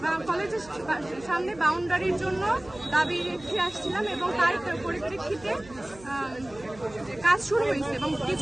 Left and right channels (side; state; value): right; noise; hum, 21 dB below the sound